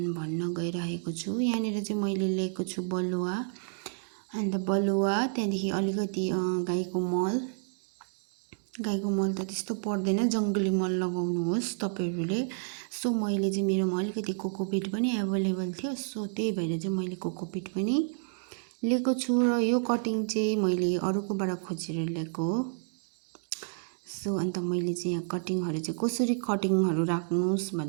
गइरहेको छु। यहाँनिर चाहिँ मैले लिएको छु बलुवा, अन्त बलुवा त्यहाँदेखि अलिकति गाईको मल त त्यस्तो पर्दैन, जंगली मल लगाउनुहोस् तपाईहरुले। सो मैले चाहिँ मेरोमा अलिकति कोकोपिट पनि अवेलेबल थियो। सो त्यही भएर चाहिँ मैले कोकोपिट पनि लिएको छु। र यो कटिङ चाहिँ मैले अरूकोबाट खोजेर ल्याएको हो। सो अन्त मैले चाहिँ यहाँ कटिङहरु चाहिँ कसरी कटिङहरु राख्नुस्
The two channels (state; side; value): silent; left; digital silence